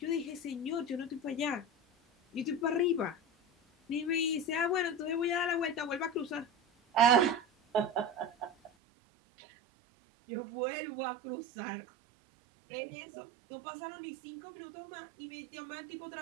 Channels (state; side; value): drops out; left; at 8.7 s